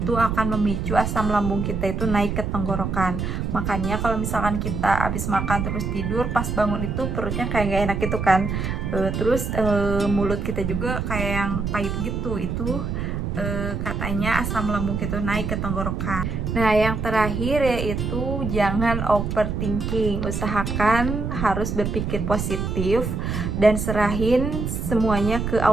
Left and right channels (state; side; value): noise; right; rumble, 2 dB below the sound